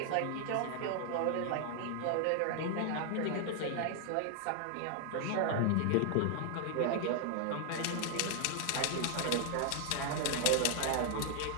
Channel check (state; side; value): different; both; correlation 0.00